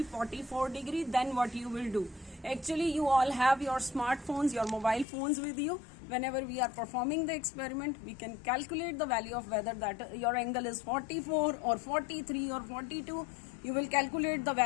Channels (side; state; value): right; drops out; at 5.1 s